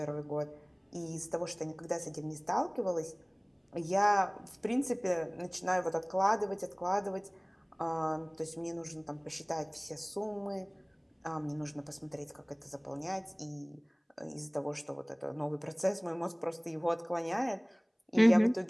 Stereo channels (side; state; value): both; identical; correlation 1.00